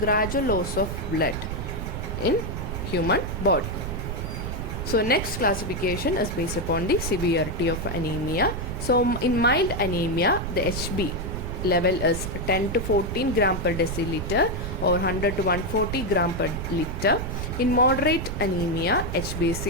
loss of blood in human body. So next classification is based upon the severity of anemia. So in mild anemia, the HB level is 10 to 14 gram per deciliter or 100 to 140 gram per liter. In moderate anemia, HB is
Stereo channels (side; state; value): right; noise; rumble, 5 dB below the sound